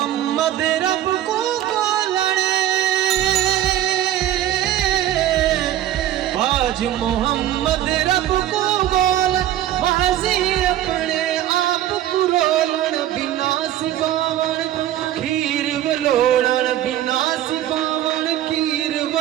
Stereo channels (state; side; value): quieter; left; 12.5 dB